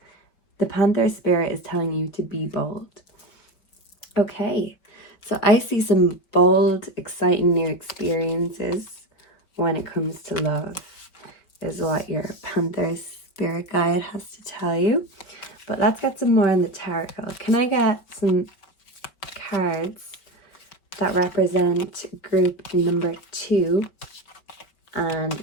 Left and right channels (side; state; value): right; late; 5.2 ms